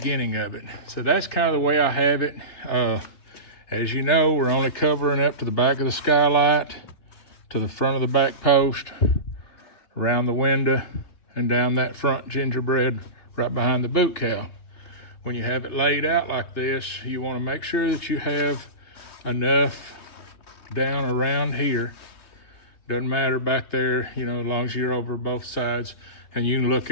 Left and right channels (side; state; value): right; late; 3.1 ms